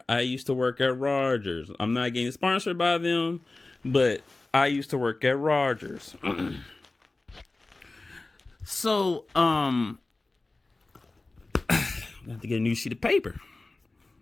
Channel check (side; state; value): right; quieter; 3.2 dB